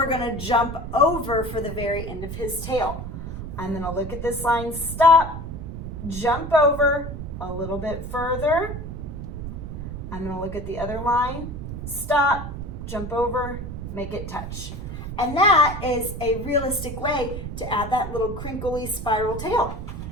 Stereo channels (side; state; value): right; noise; rumble, 7 dB below the sound